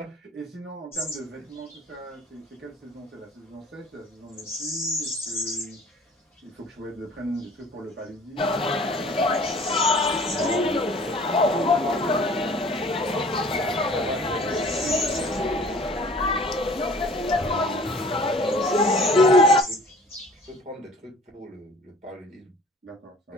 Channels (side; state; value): both; normal; correlation 0.49